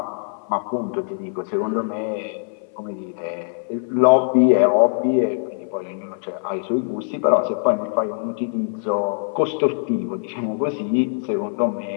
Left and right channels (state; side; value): silent; right; 56 dB below the other